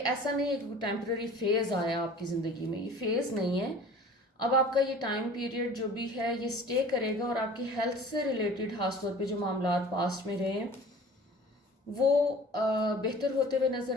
नहीं है कि टेम्पररी फेज़ आया आपकी ज़िंदगी में, ये फेज़ नहीं है। अब आपका ये टाइम पीरियड जो भी है ये स्टे करेगा और आपकी हेल्थ से रिलेटेड खासतौर पे जो मामला पास्ट में रहे हैं वो बेहतर होते हुए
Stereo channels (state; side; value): normal; both; correlation 0.45